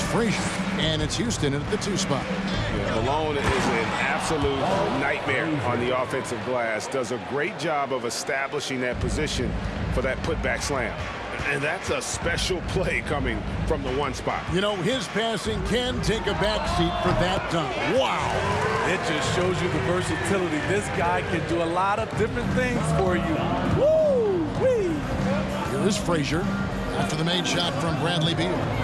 Frazier. And it's Houston at the 2 spot. Malone is an absolute nightmare on the offensive glass. Does a great job of establishing that position for that putback slam. And that's a special play coming from the 1 spot. You know, his passing can take a backseat for that dunk. Wow. It just shows you the versatility. This guy can do a lot of different things for you. Woo-wee. Here is Frazier after the made shot from Bradley Beal.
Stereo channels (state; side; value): identical; both; correlation 1.00